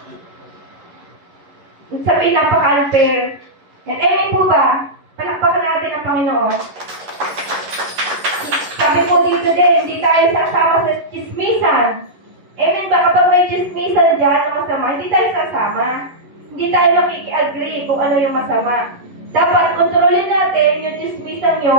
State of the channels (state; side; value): late; left; 11 ms